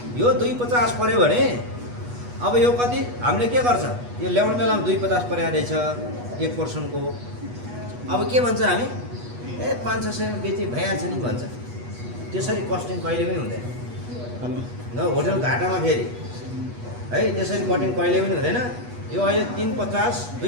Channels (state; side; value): late; left; 8.2 ms